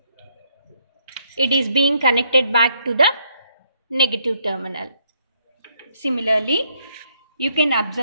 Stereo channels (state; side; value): inverted; both; correlation -0.72